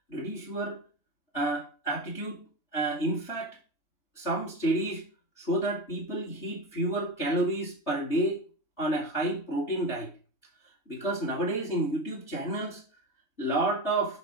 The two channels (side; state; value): right; late; 3.3 ms